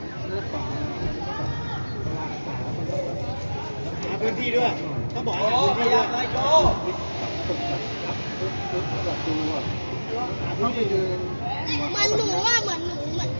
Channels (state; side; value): inverted; both; correlation -1.00